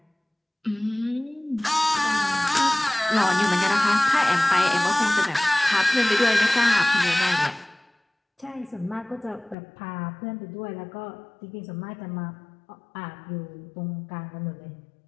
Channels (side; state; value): right; drops out; at 9.6 s